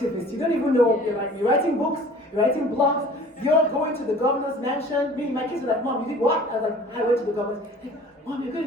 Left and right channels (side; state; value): both; normal; correlation 0.47